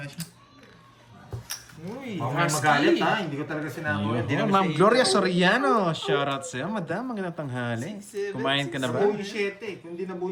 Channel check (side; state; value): both; identical; correlation 1.00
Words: siya. Uy, Baka may magalit ha, hindi ko talaga sinabaw. Hindi Ayun, naman Ma'am siya Gloria Soriano. Shoutout sa'yo, madam. Magandang tanghali. Kumain ka na ba? Nabuo yung 7. Kung hindi nabuo